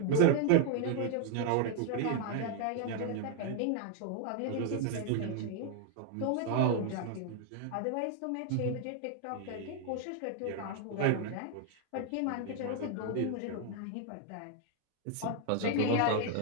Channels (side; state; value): both; different; correlation 0.00